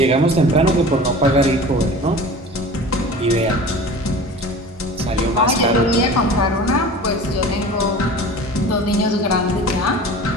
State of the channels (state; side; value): normal; both; correlation 0.39